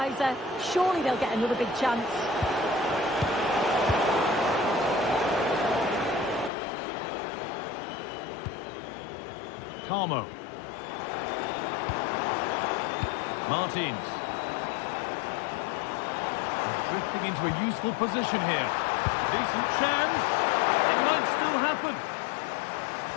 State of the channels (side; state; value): right; drops out; at 6.5 s